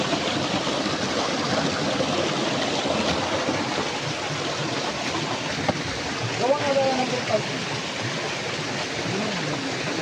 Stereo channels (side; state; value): both; identical; correlation 1.00